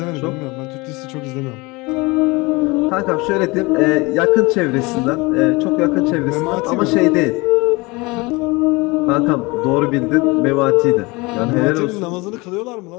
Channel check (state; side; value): quieter; right; 24.8 dB